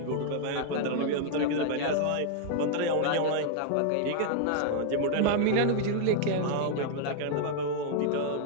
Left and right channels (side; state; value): both; different; correlation 0.00